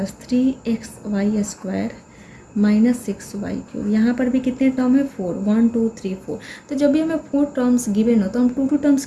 3xy square -6y³। यहाँ पर भी कितने टर्म है, 4, 1 2 3 4। तो जब भी हमें 4 टर्म्स गिवन हो तो हम 2 टर्म्स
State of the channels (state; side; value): identical; both; correlation 1.00